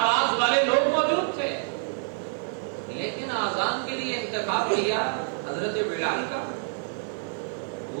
والے لوگ موجود تھے، لیکن آزان کے لیے انتخاب کیا حضرت بلال کا،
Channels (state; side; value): silent; left; 60 dB below the other